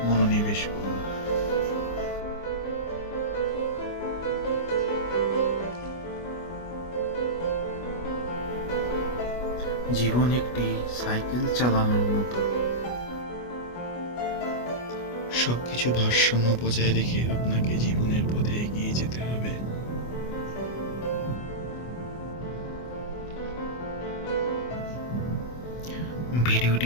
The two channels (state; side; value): late; right; 25 ms